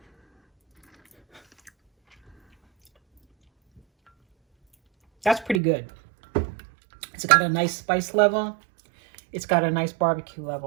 That's pretty good. It's got a nice spice level. It's got a nice barbecue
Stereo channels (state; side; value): drops out; left; at 5.6 s